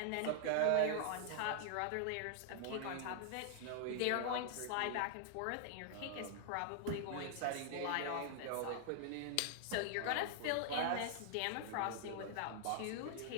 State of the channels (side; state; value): both; different; correlation -0.01